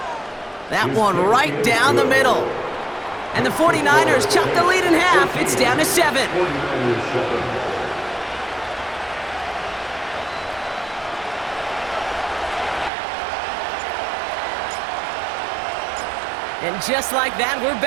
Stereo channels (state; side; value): drops out; left; at 12.9 s